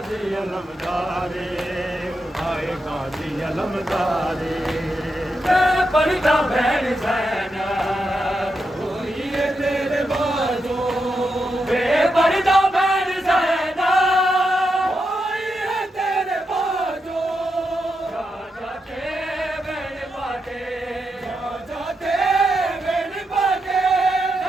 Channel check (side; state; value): both; normal; correlation 0.85